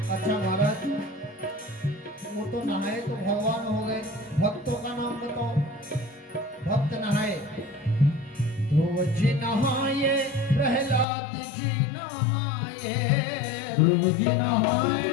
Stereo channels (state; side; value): drops out; right; at 11.1 s